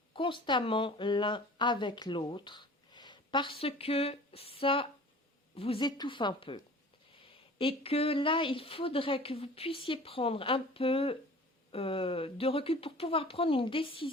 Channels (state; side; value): normal; both; correlation 0.44